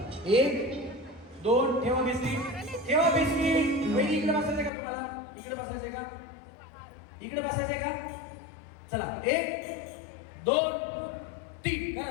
1 2 ठेवा बिस्किट ठेवा बिस्किट. वहिनी इकडे बसायचं का तुम्हाला? इकडे बसायचंय का? इकडे बसायचंय का? चला 1 2 3 करा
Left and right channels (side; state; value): right; drops out; at 4.7 s